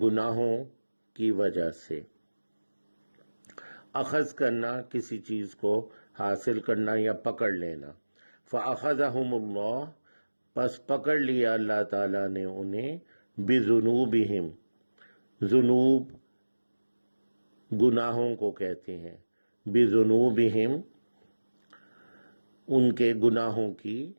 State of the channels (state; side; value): inverted; both; correlation -1.00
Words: کی وجہ سے۔ اخذ کرنا، کسی چیز کو حاصل کرنا یا پکڑ لینا۔ فَأَخَذَهُمُ اللَّهُ، پس پکڑ لیا اللہ تعالیٰ نے انہیں، بِذُنُوبِهِمْ، ذنوب گناہوں کو کہتے ہیں، بِذُنُوبِهِمْ ان کے گناہوں کی